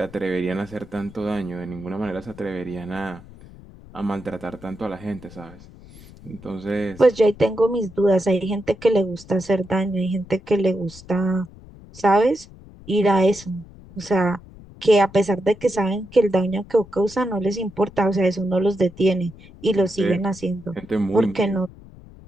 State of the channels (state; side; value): noise; left; rumble, 20 dB below the sound